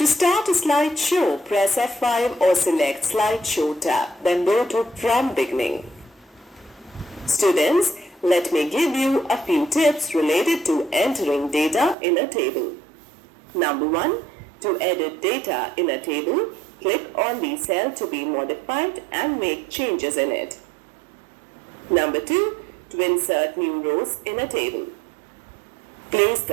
start a slideshow, press F5 or select Slideshow tab, then go to From Beginning. Students, let me give you a few tips related to entering data in a table. Number 1. To edit data in a table, click on the cell to be modified and make changes in it. Number 2. To insert new rows in a table. Place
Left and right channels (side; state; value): left; drops out; at 12.0 s